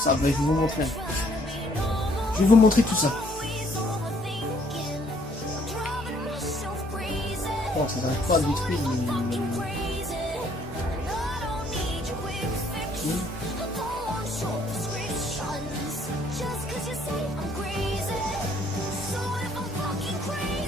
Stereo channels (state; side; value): normal; both; correlation 0.64